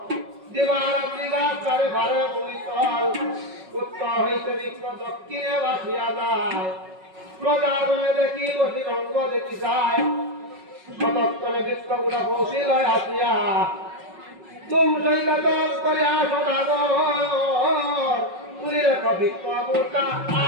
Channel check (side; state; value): left; late; 5.4 ms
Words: দিবারাত্রি গাছারে ভারে ভূমিতল উত্তর হইতে বৃক্ষ দক্ষিণে বাসিয়া যায় প্রজাগণে দেখি বসি রঙ্গ দেখি যায় সতর্কনে বৃক্ষগুলা পৌঁছিল আসিয়া তুম সৈকত করে আসো দাগর তুলি রেখ বৃক্ষ বুটা